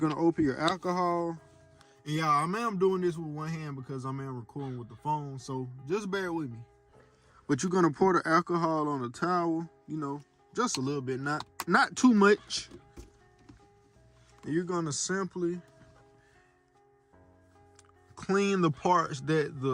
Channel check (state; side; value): identical; both; correlation 1.00